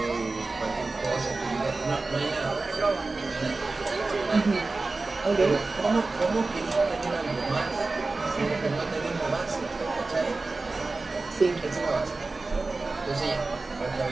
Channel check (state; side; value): quieter; left; 3.5 dB